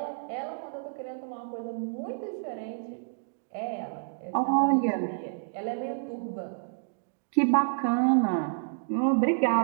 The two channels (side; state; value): left; silent; digital silence